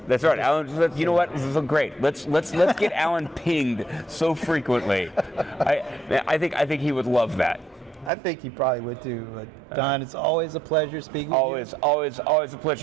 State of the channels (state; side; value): drops out; left; at 8.1 s